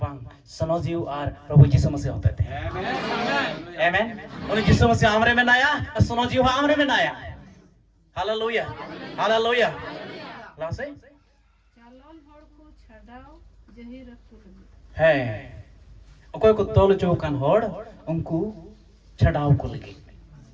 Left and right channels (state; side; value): identical; both; correlation 1.00